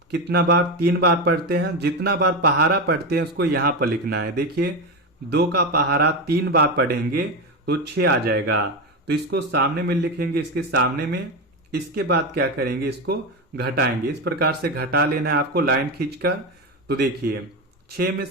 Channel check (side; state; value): both; normal; correlation 0.15